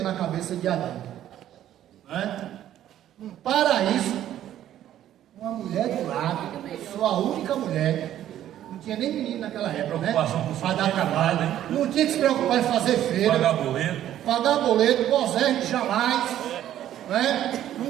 na cabeça de Adão, não é? Um paraíso, uma mulher do lado, sua única mulher. Não tinha nem menino naquela época, né? Para dar trabalho, né? Não tinha que se preocupar em fazer feira, pagar boleto, gozar jamais, né?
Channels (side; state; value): left; quieter; 11.9 dB